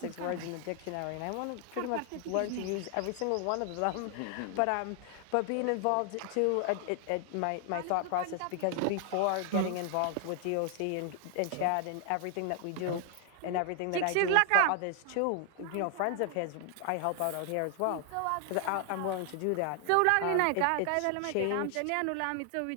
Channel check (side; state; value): both; different; correlation 0.00